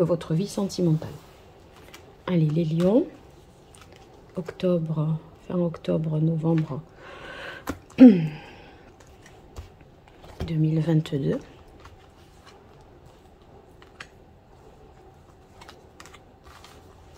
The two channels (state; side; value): identical; both; correlation 1.00